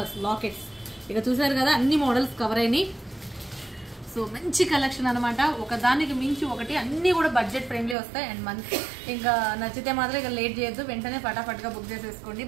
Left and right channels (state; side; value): drops out; left; at 8.0 s